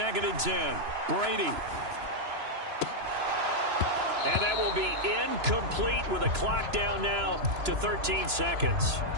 and 10. Brady. And that will be incomplete with a clock down now to 13 seconds.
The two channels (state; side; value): late; left; 3.0 ms